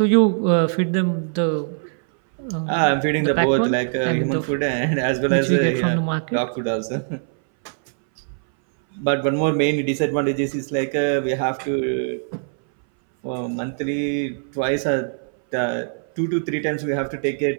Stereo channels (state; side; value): silent; left; 61 dB below the other